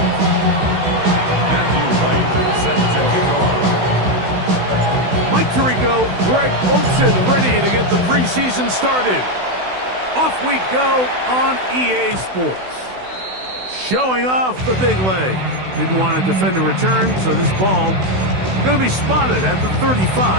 Mike Tirico, Greg Olsen ready to get the preseason started. Off we go on EA Sports. Showing off the big leg. Didn't want to defend a return, so this ball going to be spotted at the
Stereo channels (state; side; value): late; left; 16 ms